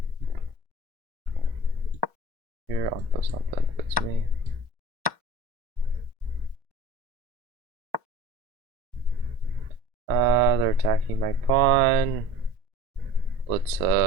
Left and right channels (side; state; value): left; late; 1.1 ms